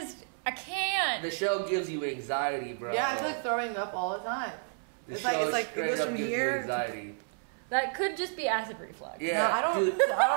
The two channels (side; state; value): left; silent; 57 dB below the other